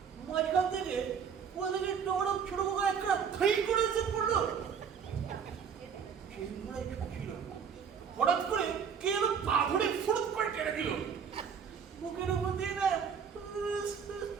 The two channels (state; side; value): quieter; left; 6.9 dB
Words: মাঝখান থেকে ওদেরকে ডোড়ো ছোট করে একটা খাই করে এসে পড়লো। সেই ঘোড়ায় ছিল হঠাৎ করে কে এলো পা ধরে ফুড়ুত করে টেনে দিল বুকের উপর দিয়ে না